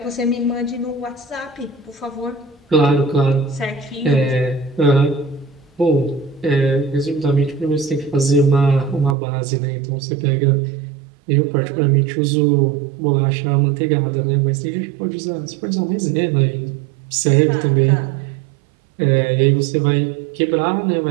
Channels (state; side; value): drops out; left; at 9.2 s